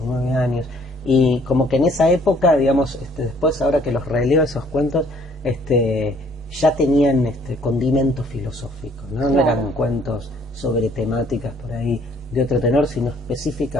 9 años, y como que en esa época, digamos, después ahora que los releo esos cuentos, ya tenían condimento filosófico, ¿no? Claro. No eran cuentos sobre temáticas por ahí de otro tenor, sino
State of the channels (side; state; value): both; normal; correlation 0.61